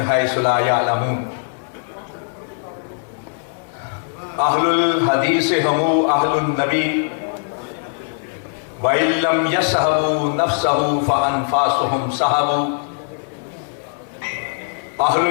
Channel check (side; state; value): right; silent; 66 dB below the other